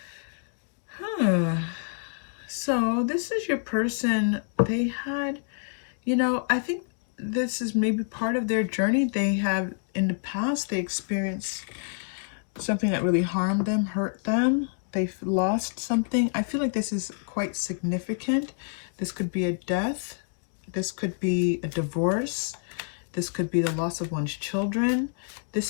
So this is your person. They had, you know, I think this is maybe part of their journey. They have, in the past, they experienced something that really harmed them, hurt them. They've lost something. I feel like this is quite significant. This could be a death. This could be a divorce. This could be the loss of one's children.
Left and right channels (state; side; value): silent; right; digital silence